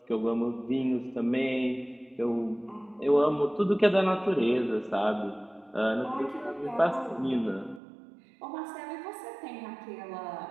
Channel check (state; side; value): drops out; left; at 7.8 s